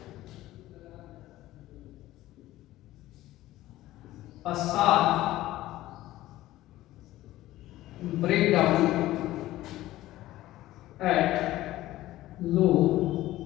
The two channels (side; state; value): right; quieter; 15.8 dB